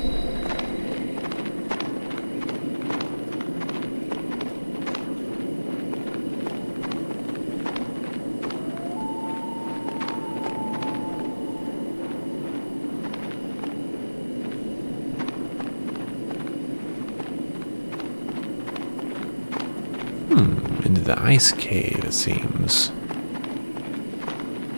the ice cave, it seems.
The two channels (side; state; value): both; inverted; correlation -1.00